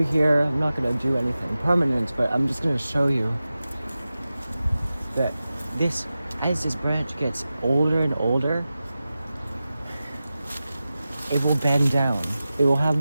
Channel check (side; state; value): both; inverted; correlation -0.94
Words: here. I'm not going to do anything permanent, but I'm just going to show you that as this branch gets older and older, it will bend down. It will have